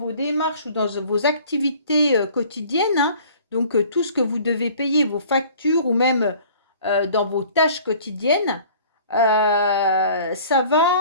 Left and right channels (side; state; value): both; inverted; correlation -0.49